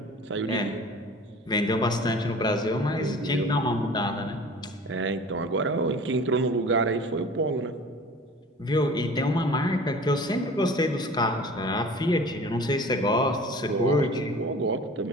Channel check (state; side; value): normal; both; correlation 0.43